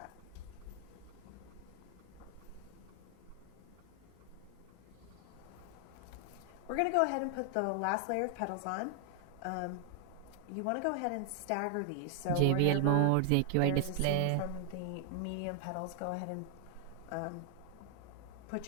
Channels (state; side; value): different; both; correlation 0.00